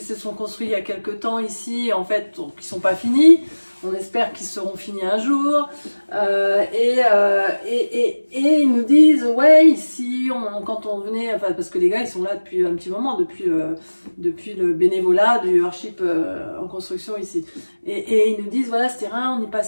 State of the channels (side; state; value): both; inverted; correlation -1.00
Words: se sont construits il y a quelques temps ici, en fait, qui sont pas finis. On espère qu'ils seront finis un jour. Et ils nous disent, ouais, ici, quand on venait, enfin, parce que les gars, ils sont là depuis un petit moment, depuis le bénévolat du Earthship en construction ici. Et ils nous disent, voilà, ce terrain, on y